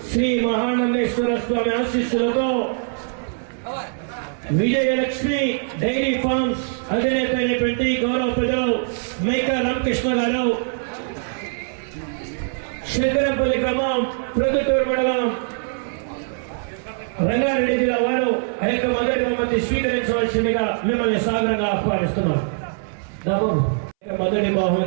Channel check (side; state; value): left; silent; 64 dB below the other